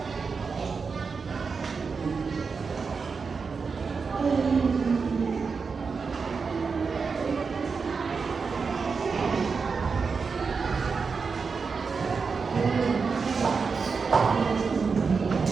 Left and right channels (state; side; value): quieter; left; 5.1 dB